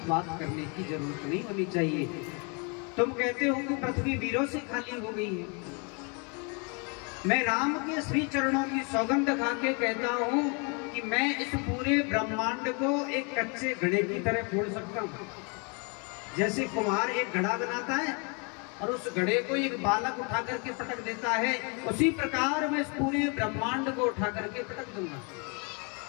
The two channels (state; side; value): quieter; right; 34.1 dB